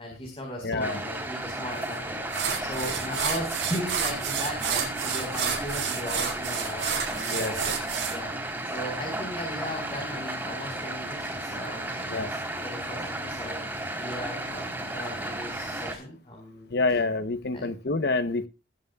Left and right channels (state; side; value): normal; both; correlation 0.13